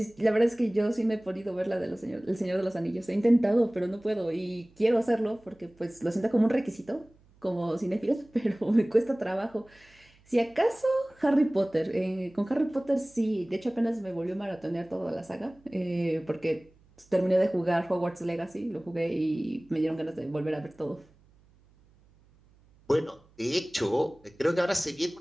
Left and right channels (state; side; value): noise; right; hum, 30 dB below the sound